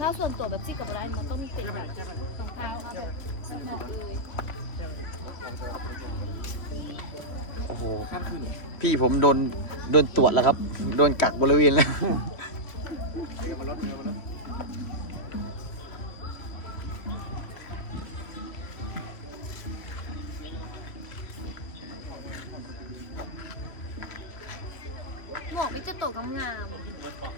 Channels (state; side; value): late; right; 3.0 ms